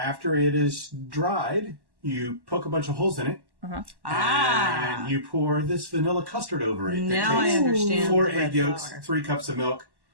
it is dried, you poke a bunch of holes in it. Uh-huh. And you pour this vanilla custard over it. Now I understand. 4 bread egg yolks, flour. 3 cups of milk,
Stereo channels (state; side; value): late; left; 1.1 ms